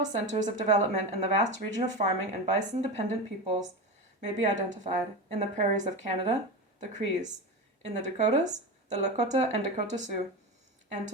centers of development in the vast region of farming and bison-dependent peoples may be identified in the prairies of Canada, the Crees, in the Dakotas, the Lakota and Dakota Sioux, and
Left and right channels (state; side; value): normal; both; correlation 0.22